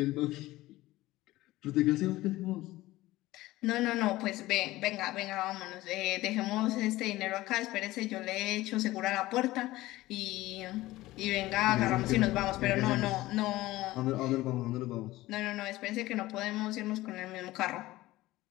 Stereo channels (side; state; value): right; quieter; 17.6 dB